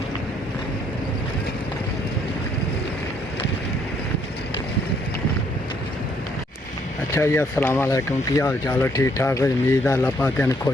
अच्छा जी, अस्सलाम वालेकुम। की हाल चाल है? ठीक ठाक है। उम्मीद है अल्लाह पाक तेन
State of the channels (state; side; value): normal; both; correlation 0.68